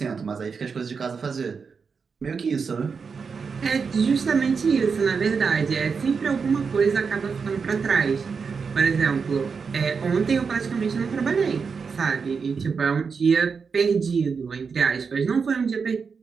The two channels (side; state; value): left; quieter; 5.5 dB